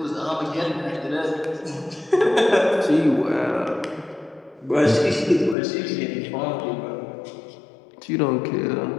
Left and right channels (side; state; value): right; drops out; at 5.6 s